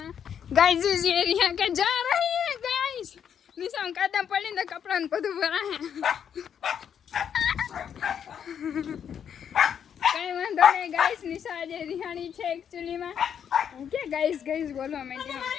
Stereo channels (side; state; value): right; quieter; 8.3 dB